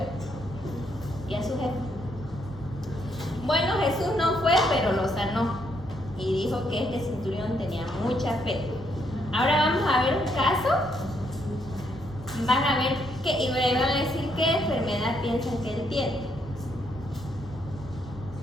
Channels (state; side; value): normal; both; correlation 0.74